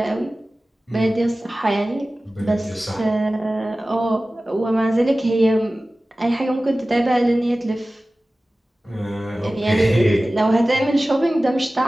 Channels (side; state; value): both; normal; correlation 0.96